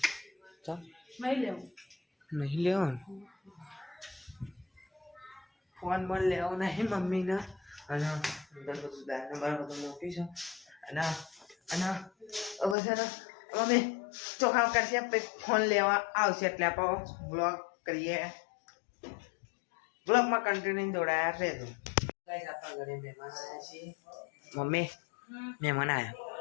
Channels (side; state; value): right; drops out; at 12.8 s